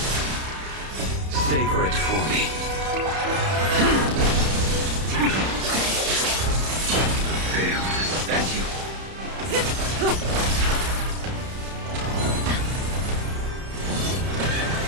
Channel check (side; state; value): left; late; 31 ms